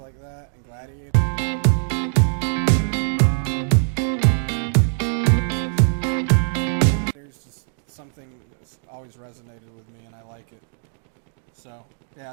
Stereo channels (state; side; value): silent; left; digital silence